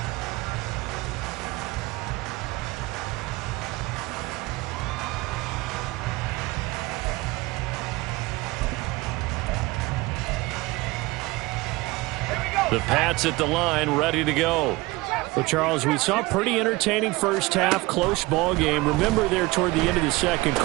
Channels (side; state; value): left; quieter; 21.7 dB